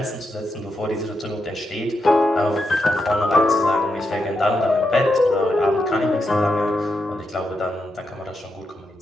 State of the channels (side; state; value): both; normal; correlation 0.84